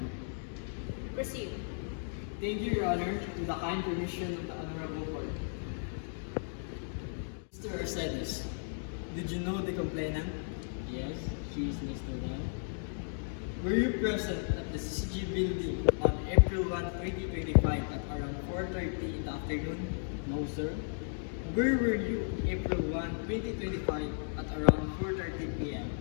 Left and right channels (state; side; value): silent; right; digital silence